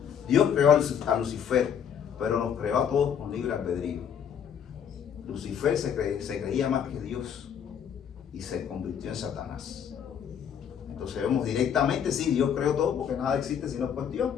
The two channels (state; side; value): quieter; right; 8.2 dB